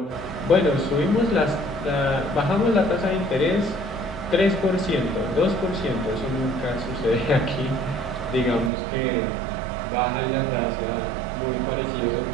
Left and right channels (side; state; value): left; drops out; at 8.7 s